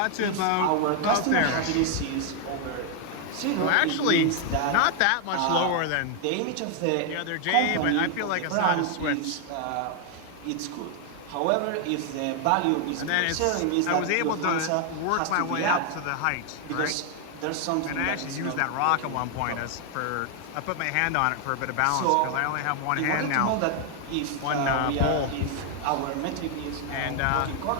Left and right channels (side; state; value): both; different; correlation 0.00